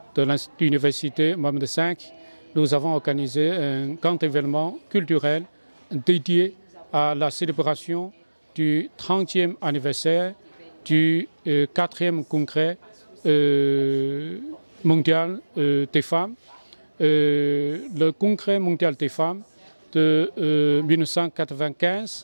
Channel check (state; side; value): inverted; both; correlation -1.00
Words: de l'Université Mohammed V, nous avons organisé un grand événement culturel dédié à la célébration du 30e anniversaire du 4e congrès mondial des femmes. Le congrès mondial des femmes de